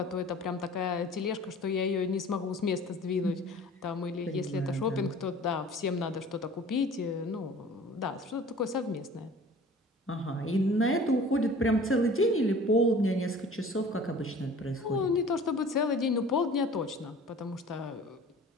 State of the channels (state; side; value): normal; both; correlation 0.46